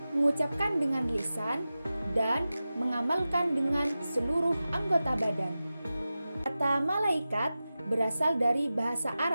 mengucapkan dengan lisan, dan mengamalkan dengan seluruh anggota badan. Kata malaikat berasal dari bahasa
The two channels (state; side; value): inverted; both; correlation -0.94